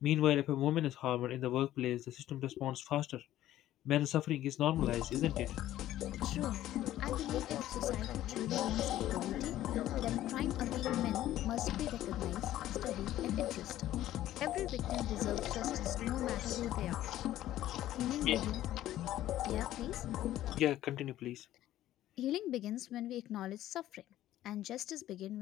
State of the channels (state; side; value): quieter; right; 13.6 dB